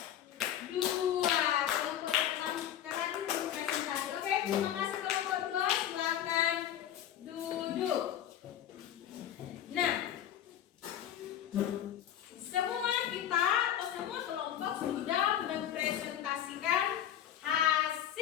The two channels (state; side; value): quieter; right; 10.7 dB